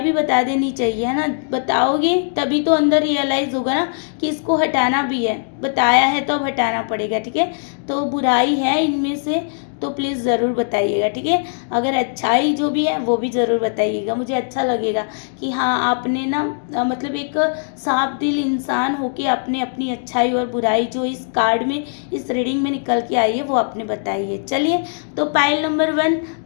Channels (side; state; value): right; silent; digital silence